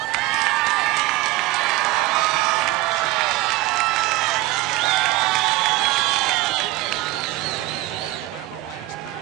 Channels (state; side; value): quieter; left; 18.6 dB